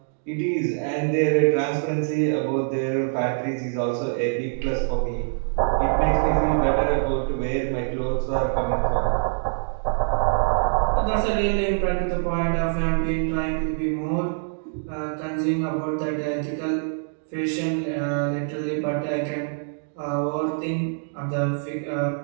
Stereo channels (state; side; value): silent; left; digital silence